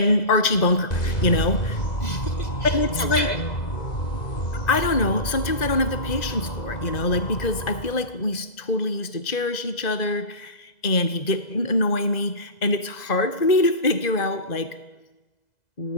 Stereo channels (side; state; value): right; late; 2.0 ms